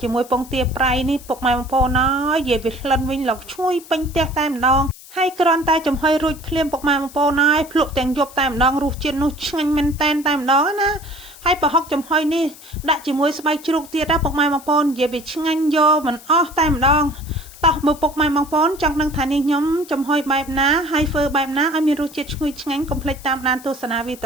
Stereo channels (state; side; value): noise; left; hiss, 19 dB below the sound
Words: ជាមួយពងទាប្រៃនេះពុកម៉ែបងប្អូនអើយនិយាយវាក្លិនវិញឡុកឈ្ងុយពេញផ្ទះតែម្ដងហើយគ្រាន់តែចំហុយរួចភ្លាមពុកម៉ែបងប្អូនហើយភ្លក់ទាំងយប់តែម្ដងរសជាតិនោះឆ្ងាញ់មែនតែនតែម្ដងណាហើយប្រហុកចំហុយនេះដាក់ជាមួយស្បែកជ្រូកទៀតណាពុកម៉ែបងប្អូននិយាយវាឆ្ងាញ់យកមិនអស់តែម្ដងតោះមើលពុកម៉ែបងប្អូនចង់ដឹងថានេះខ្ញុំចំហុយបែបណាហើយធ្វើបែបណាឲ្យមានរសជាតិឈ្ងុយឆ្ងាញ់កុំភ្លេចតាមដានទស្សនាវីដ